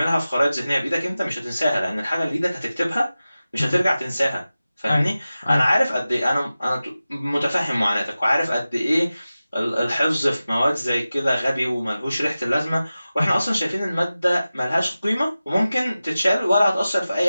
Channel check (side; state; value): both; inverted; correlation -0.95